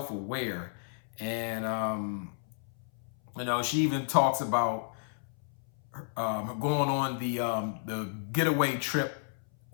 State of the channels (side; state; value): right; silent; 56 dB below the other